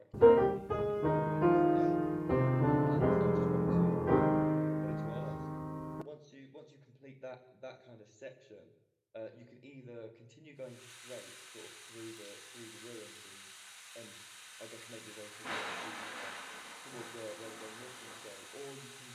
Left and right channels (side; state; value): both; identical; correlation 1.00